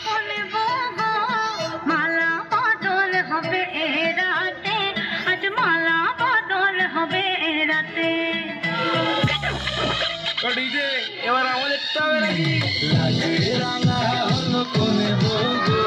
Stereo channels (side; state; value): both; identical; correlation 1.00